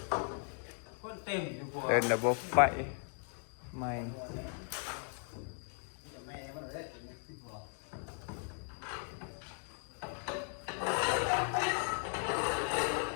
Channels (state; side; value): silent; right; 53 dB below the other